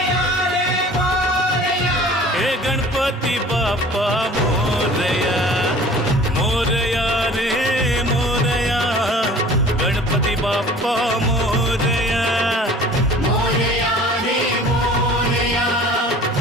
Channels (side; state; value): both; normal; correlation 0.46